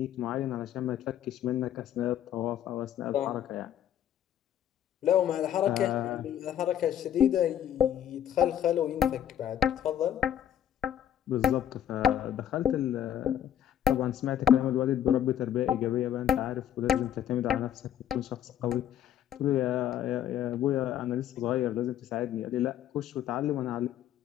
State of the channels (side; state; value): right; quieter; 10.5 dB